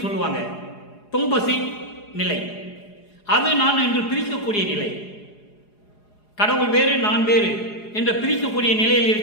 சொல்லுவாங்க. தொம்பசி நிலை, அது நான் என்று பிரிக்கக்கூடிய நிலை. கடவுள் வேறு நான் வேறு என்று பிரிக்கக்கூடிய நிலையில்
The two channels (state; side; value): late; right; 4.8 ms